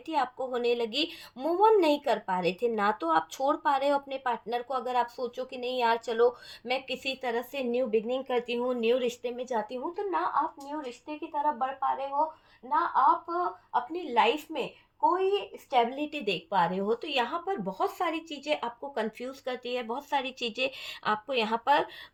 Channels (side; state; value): both; identical; correlation 1.00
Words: आपको होने लगी, मूव ऑन नहीं कर पा रहे थे। ना तो आप छोड़ पा रहे हो अपने पार्टनर को, अगर आप सोचो कि नहीं यार चलो मैं किसी तरह से न्यू बिगनिंग करती हूँ, न्यू रिश्ते में जाती हूँ, तो ना आप न्यू रिश्ते की तरफ बढ़ पा रहे हो, ना आप अपनी लाइफ में कोई स्टेबिलिटी देख पा रहे हो। तो यहाँ पर बहुत सारी चीज़ें आपको कंफ्यूज करती है, बहुत सारी चीज़ें आपको यहाँ पर